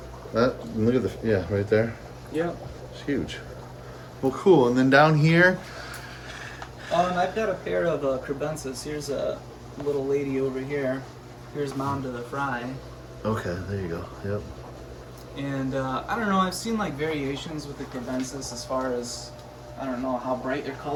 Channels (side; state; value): both; identical; correlation 1.00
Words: at that. Look at the right there. Yeah. It's huge. Well, cool. And then down here. I've got a pair of crebensis. Here's a little lady over here. Here's mom to the fry. Okay, there you go. Yep. And I don't know. I've seen like variations with the crebensis as far as I don't know how bright their